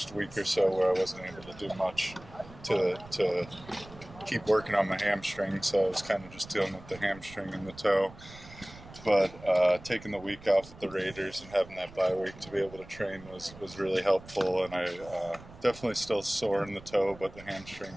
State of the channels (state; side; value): noise; right; rumble, 19 dB below the sound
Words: week or so where I wasn't able to do much to keep working on my hamstring, so I was kind of just dealing with the hamstring and the toe. But taking the week off with the Raiders and having that bye week to be able to train was really helpful, and I definitely still sore in the toe, but the